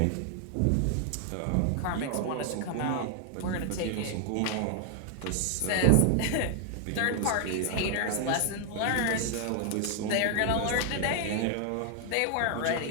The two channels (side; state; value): both; different; correlation 0.00